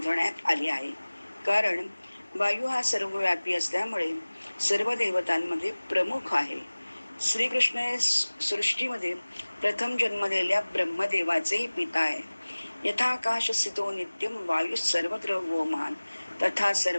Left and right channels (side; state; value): both; inverted; correlation -1.00